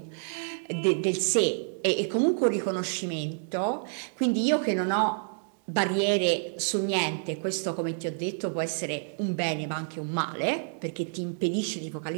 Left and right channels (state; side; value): silent; left; digital silence